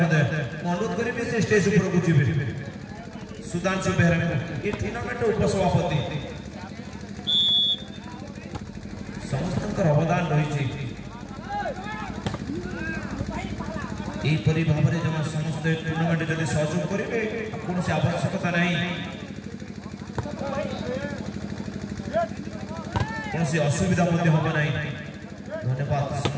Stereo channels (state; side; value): identical; both; correlation 1.00